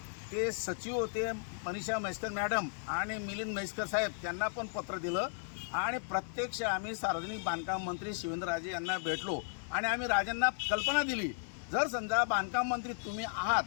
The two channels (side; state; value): right; silent; 54 dB below the other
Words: ते सचिव होते मनीषा म्हैसकर मॅडम आणि मिलिंद म्हैसकर साहेब त्यांना पण पत्र दिलं, आणि प्रत्यक्ष आम्ही सार्वजनिक बांधकाम मंत्री शिवेंद्रराजे यांना भेटलो आणि आम्ही राजांना कल्पना दिली, जर समजा बांधकाम मंत्री तुम्ही